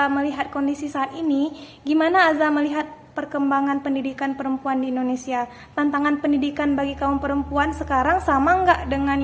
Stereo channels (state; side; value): identical; both; correlation 1.00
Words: melihat kondisi saat ini, gimana Azza melihat perkembangan pendidikan perempuan di Indonesia? Tantangan pendidikan bagi kaum perempuan sekarang sama nggak dengan